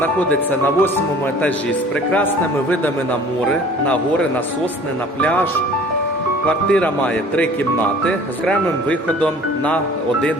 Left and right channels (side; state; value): both; normal; correlation 0.49